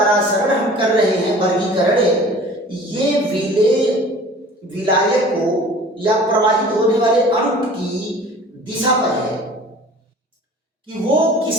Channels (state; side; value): normal; both; correlation 0.45